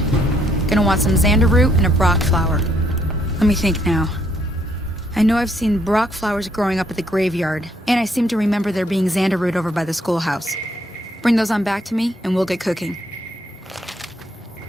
Gonna want some xander root and a brock flower. Let me think now. I know I've seen brock flowers growing up at the graveyard, and I seem to remember there being xander root over by the schoolhouse. Bring those on back to me, and we'll get cooking.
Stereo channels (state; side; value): normal; both; correlation 0.70